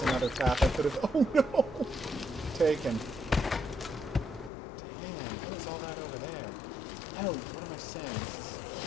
another path I could have, oh no, taken. Damn, what is all that over there? Oh, what am I saying? This is...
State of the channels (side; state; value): right; drops out; at 4.5 s